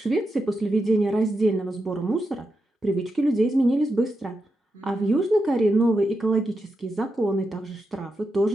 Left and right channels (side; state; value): both; normal; correlation 0.87